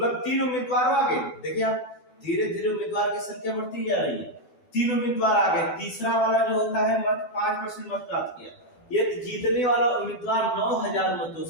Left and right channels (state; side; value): late; right; 12 ms